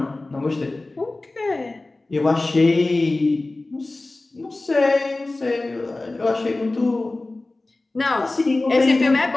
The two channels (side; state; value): right; quieter; 3.0 dB